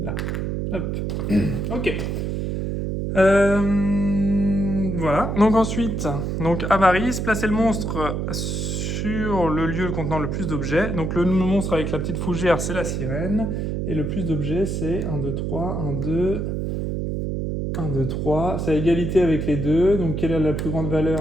là. Hop. Ok. Voilà. Donc ensuite, avarice, placer le monstre sur le lieu contenant le plus d'objets. Donc le monstre avec la petite fougère, c'est la sirène. Et le plus d'objets, c'est 1, 2, 3, 1, 2... 1, 2, 3, c'est à égalité avec les deux. Donc, quelle est la plus grande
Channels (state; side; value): noise; right; hum, 2 dB below the sound